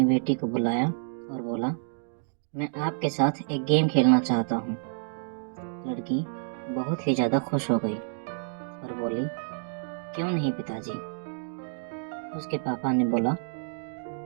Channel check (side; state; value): left; silent; digital silence